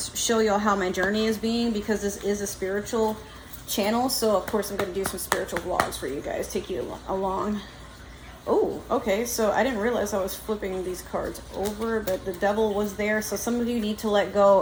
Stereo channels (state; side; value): identical; both; correlation 1.00